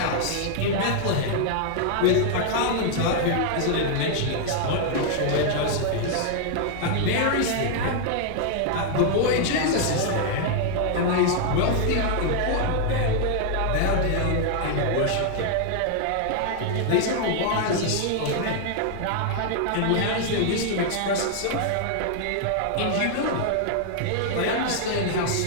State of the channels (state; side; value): different; both; correlation -0.01